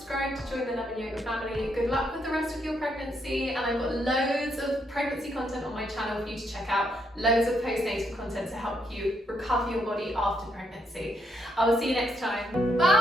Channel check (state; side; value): normal; both; correlation 0.76